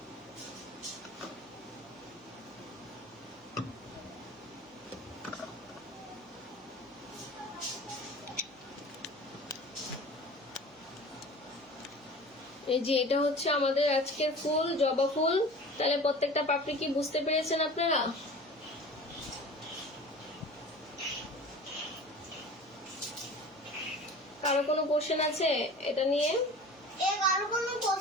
এই যে এটা হচ্ছে আমাদের আজকের ফুল, জবা ফুল। তাহলে প্রত্যেকটা পাপড়ি কি বুঝতে পেরেছেন আপনারা? কারো কোনো কোশ্চেন আছে এটা নিয়ে? কারো কোনো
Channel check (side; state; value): right; noise; hum, 28 dB below the sound